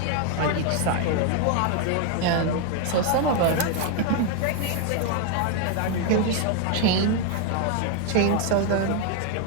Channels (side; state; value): both; different; correlation 0.01